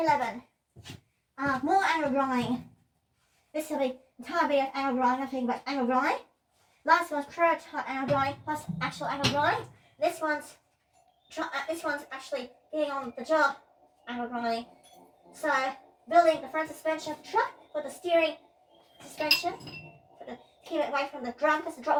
More angle drawing. This will be entire video of angle drawing, nothing but angle drawing. Last one's prototype angle drawing plus actual angle drawing. This one's actually getting on the job angle drawing. So, building the front suspension of the truck with the steering suspension to keep it away from the drum, because the drop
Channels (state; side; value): identical; both; correlation 1.00